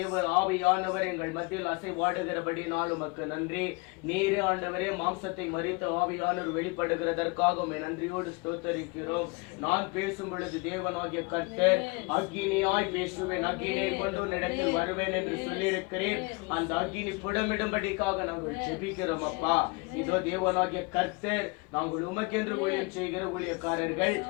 ஆவியானவர் எங்கள் மத்தியில் அசைவாடுகிறபடினால் உமக்கு நன்றி. நீரே ஆண்டவரே மாம்சத்தை மறித்த ஆவியானவர் வெளிப்படுகிறதற்காக நன்றியோடு ஸ்தோத்தரிக்கிறோம். நான் பேசும் பொழுது தேவனாகிய கர்த்தர் அக்கினியாய் பேசுவேன், அக்கினியை கொண்டு உன்னிடத்தில் வருவேன் என்று சொல்லியிருக்கிறேன். அந்த அக்கினி புடமிடும்படிக்காக நாங்கள் ஜெபிக்கிறோம் அப்பா. இதோ தேவனாகிய கர்த்தர், நாங்கள் உமக்கென்று ஊழியம் செய்கிற ஊழியக்காரர்கள்,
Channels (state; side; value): quieter; right; 28.5 dB